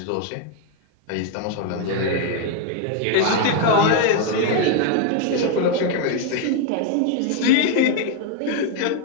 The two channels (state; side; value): different; both; correlation 0.01